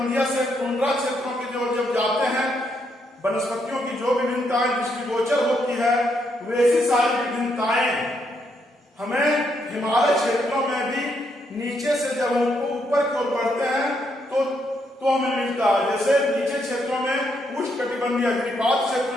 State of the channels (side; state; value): both; normal; correlation 0.76